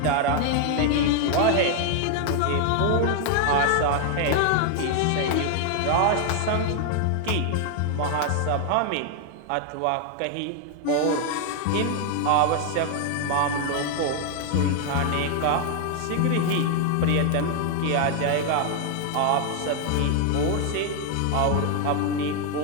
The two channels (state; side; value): different; both; correlation 0.00